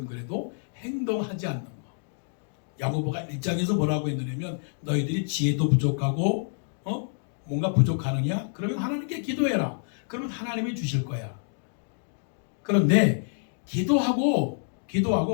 그래도 행동하지 않는 거. 야고보가 1장에서 뭐라고 했느냐면 너희들이 지혜도 부족하고 뭔가 부족하느냐? 그러면 하나님께 기도해라. 그러면 하나님이 주실 거야. 그런데 기도하고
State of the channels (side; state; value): right; silent; digital silence